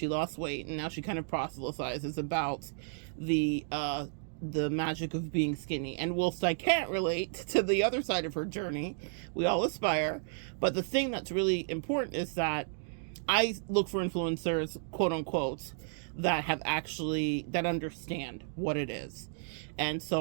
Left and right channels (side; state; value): left; silent; digital silence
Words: lost weight, and now she kind of proselytizes about the magic of being skinny. And whilst I can't relate to the other side of her journey, we all aspire. But the thing that's really important is that I look for influencers, quote unquote, that understand what it is. And